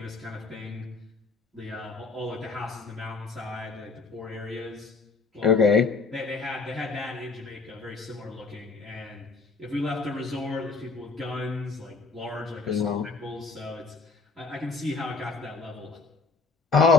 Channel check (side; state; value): right; quieter; 4.2 dB